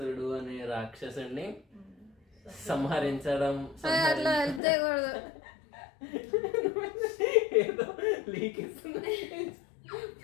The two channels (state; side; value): drops out; right; at 4.6 s